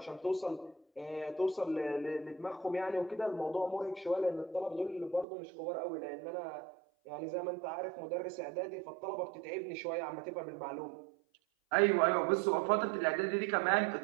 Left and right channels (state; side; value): drops out; left; at 5.2 s